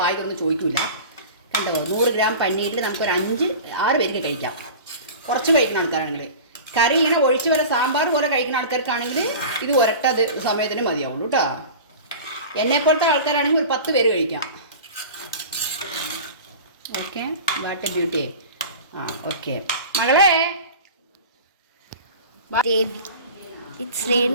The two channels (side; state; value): both; inverted; correlation -0.36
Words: വായിക്കൊന്നും ചോദിക്കില്ല. കണ്ടോ, 100 ഗ്രാം പനീരിൽ നമുക്കൊരു 5-6 പേർക്ക് കഴിക്കാം. കുറച്ച് കഴിക്കുന്ന ആൾക്കാരാണെങ്കിൽ. കറി ഇങ്ങനെ ഒഴിച്ച് വരെ സാമ്പാർ പോലെ കഴിക്കുന്ന ആൾക്കാർക്കാണെങ്കിൽ ഇത് ഒരട്ടത് സമയത്തിന് മതിയാവുള്ളൂ കേട്ടോ. എന്നെപ്പോലത്തെ ആൾക്കാരാണെങ്കിൽ ഒരു 10 പേര് കഴിക്കാം. Okay, what A beauty. Okay മകളെ, ഇറ്റ്സ്